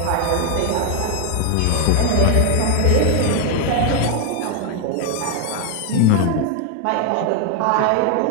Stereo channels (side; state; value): both; different; correlation 0.00